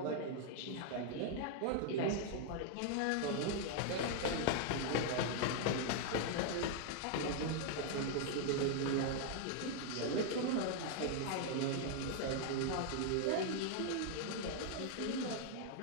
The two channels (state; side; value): different; both; correlation 0.00